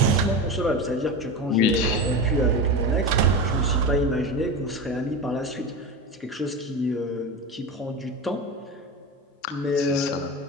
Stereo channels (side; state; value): both; normal; correlation 0.23